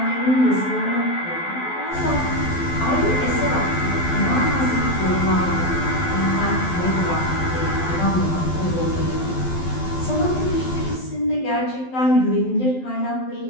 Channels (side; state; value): right; late; 12 ms